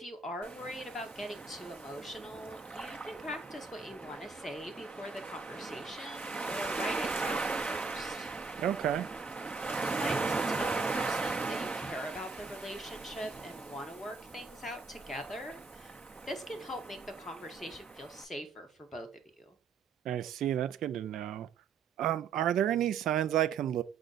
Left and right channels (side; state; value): left; quieter; 5.1 dB